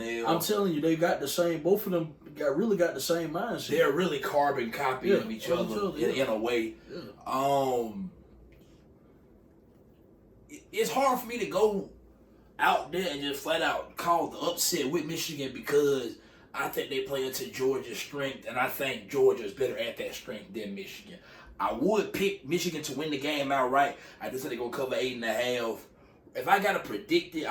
I'm telling you, they got the same. Both of them really got the same mindset. They're really carbon copy of each other in a way. Yeah. It's hard for me to go out there and just flat out call the upset with Michigan because I think they play into Georgia's strength, and I think Georgia is better at that strength than Michigan. I would pick Michigan to win the game outright. I just think they're going to cover 8.5. If I got to predict it,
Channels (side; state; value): both; identical; correlation 1.00